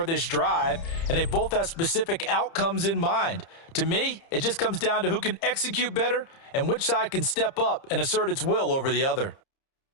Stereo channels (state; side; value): late; right; 30 ms